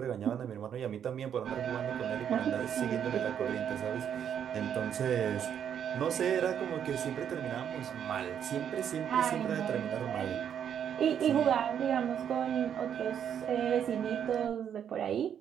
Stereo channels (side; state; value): left; quieter; 8.8 dB